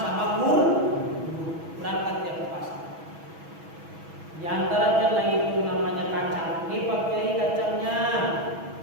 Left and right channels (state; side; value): late; left; 6.2 ms